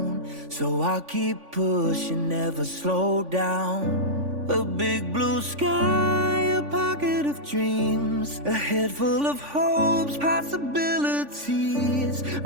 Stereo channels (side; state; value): left; late; 3.5 ms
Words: so I'll keep pushing, never slow down. A big blue sky, a pocket of dreams, a head full of hopes, possibilities.